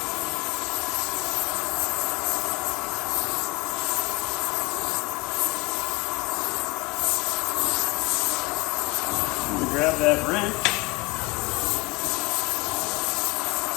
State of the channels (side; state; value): right; quieter; 24.4 dB